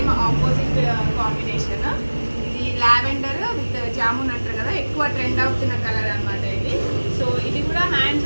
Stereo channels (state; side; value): inverted; both; correlation -1.00